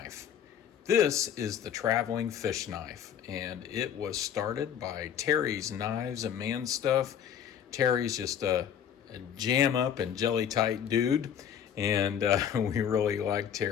This is the traveling fish knife, and it was started by Terry's Knives and Man Stuff. Terry's just a jam up and jelly tight dude, and we really like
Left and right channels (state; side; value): quieter; right; 8.9 dB